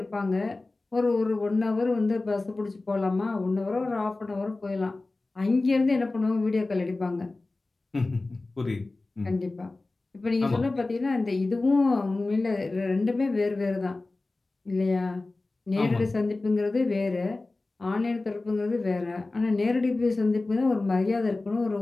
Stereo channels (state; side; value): quieter; right; 3.2 dB